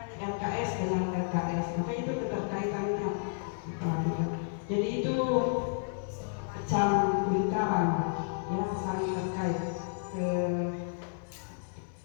saran yang saling terkait ke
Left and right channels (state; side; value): silent; right; 57 dB below the other